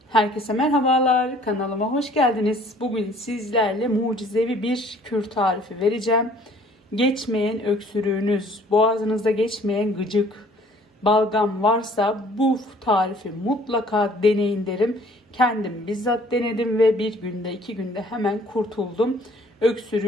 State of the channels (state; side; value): normal; both; correlation 0.56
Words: Herkese merhabalar, kanalıma hoş geldiniz. Bugün sizlerle mucizevi bir kür tarifi vereceğim. Geçmeyen öksürüğünüz, boğazınızda geçmeyen gıcık, balgam varsa bu tarifi mutlaka deneyin derim. Kendim bizzat denedim ve bir günde 2 günde hemen kurtuldum.